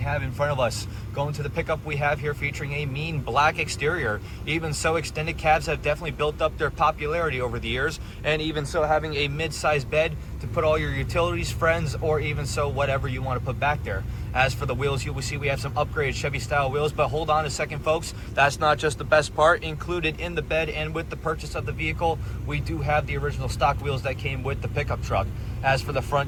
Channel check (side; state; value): both; identical; correlation 1.00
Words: in front of us. Going to the pickup we have here featuring a mean black exterior. Even so, extended cabs have definitely built up their popularity over the years. And even so, having a mid-sized bed to put all your utilities, friends, or even so, whatever you want to put back there. As for the wheels, you will see we have some upgraded Chevy style wheels, but hold on a second, folks. That's not just the best part. Included in the bed and with the purchase of the vehicle, we do have the original stock wheels that came with the pickup truck. As for the